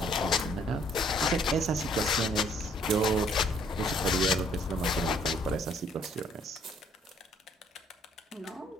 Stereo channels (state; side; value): normal; both; correlation 0.63